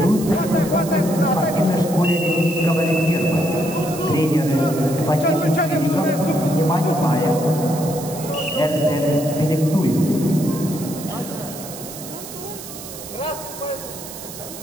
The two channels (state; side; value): noise; right; hiss, 12 dB below the sound